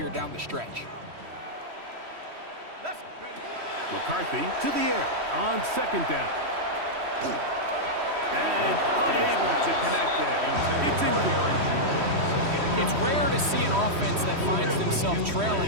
down the stretch. McCarthy to the air on second down. And unable to connect there. It's incomplete. It's rare to see an offense that finds themselves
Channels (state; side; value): late; left; 3.1 ms